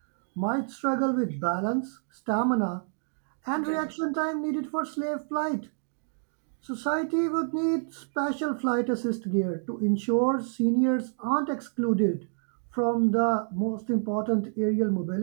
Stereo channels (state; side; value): silent; left; digital silence